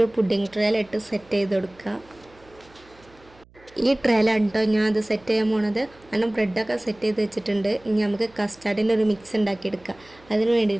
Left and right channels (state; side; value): noise; right; hum, 28 dB below the sound